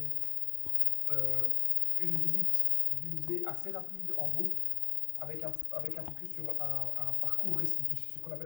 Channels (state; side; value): silent; right; digital silence